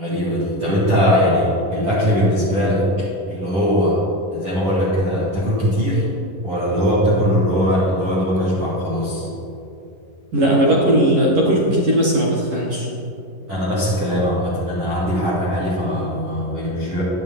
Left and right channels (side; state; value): left; late; 11 ms